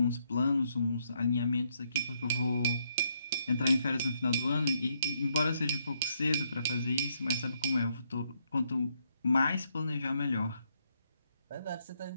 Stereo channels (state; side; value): inverted; both; correlation -0.75